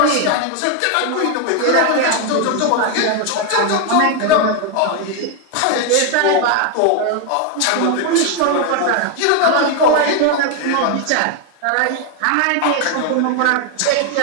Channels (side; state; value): both; different; correlation 0.01